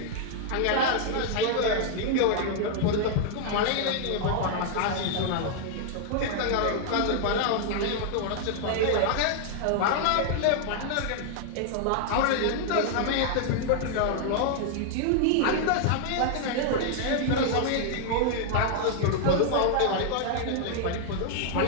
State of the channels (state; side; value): different; both; correlation 0.00